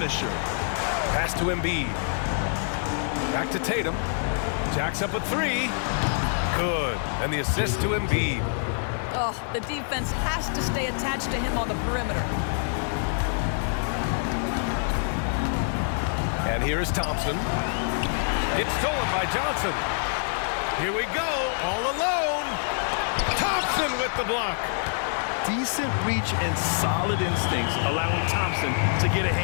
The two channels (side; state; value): right; silent; 61 dB below the other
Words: Pass to Embiid. Back to Tatum. Jacks up a 3. Good. And the assist to Embiid. Oh, the defense has to stay attached to him on the perimeter. And here is Thompson. It's stolen by Johnson. Here we go, all alone. Thompson with the block. Decent reach and solid instincts, allowing Thompson to get a